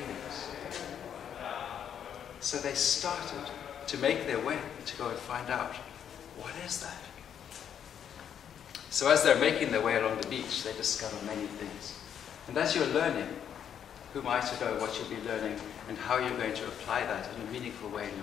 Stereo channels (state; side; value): quieter; right; 8.8 dB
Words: So they started to make their way to go and find out, what is that? So as they're making their way along the beach, they discover many things. And as you're learning, who am I to know what you'll be learning and how you're going to apply that in a meaningful way in